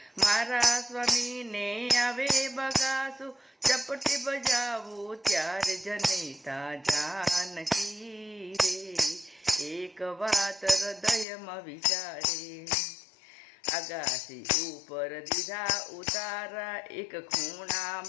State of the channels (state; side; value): drops out; right; at 11.2 s